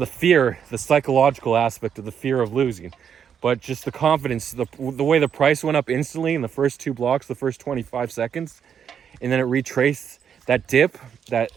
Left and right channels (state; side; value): quieter; left; 8.0 dB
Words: fear, the psychological aspect of the fear of losing. But just the confidence, the way the price went up instantly in the first 2 blocks, the first 25 seconds, and then it retraced that dip, that